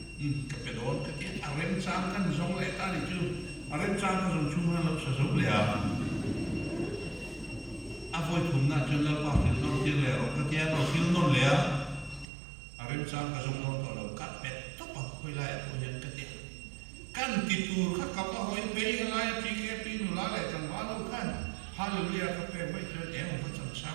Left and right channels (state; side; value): drops out; left; at 12.2 s